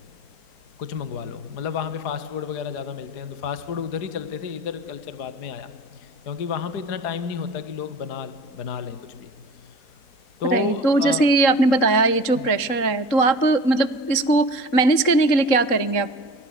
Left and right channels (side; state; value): right; late; 3.8 ms